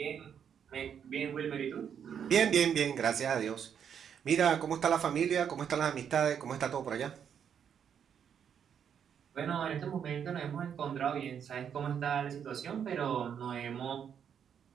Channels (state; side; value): quieter; left; 8.1 dB